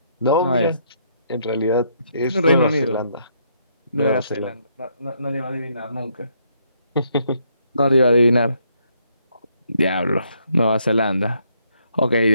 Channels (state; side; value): inverted; both; correlation -0.72